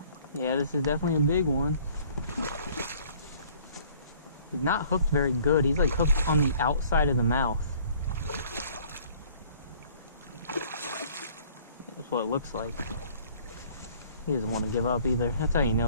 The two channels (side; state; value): both; inverted; correlation -0.56